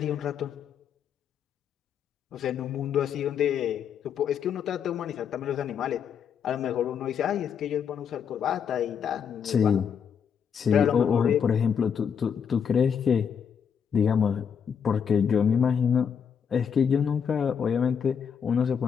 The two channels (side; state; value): right; quieter; 7.4 dB